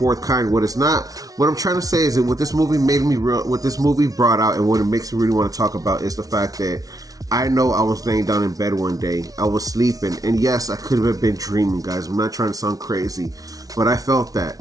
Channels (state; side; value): late; left; 0.18 ms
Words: Kind, what I'm trying to say is that what this movie what this movie brought out, and what it makes me really want to talk about, is the fact that I know I was laying down in bed one day, I was sleeping, and yes, I could have been dreaming, guys. I'm not trying to sound crazy, but I felt